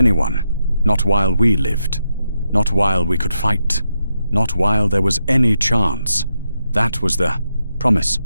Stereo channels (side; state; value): both; inverted; correlation -0.84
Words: not while we lived, not while we could fight, not while there was any chance. That was the promise,